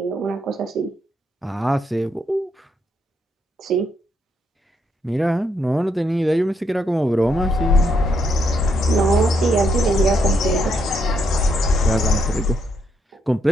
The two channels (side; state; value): both; normal; correlation 0.76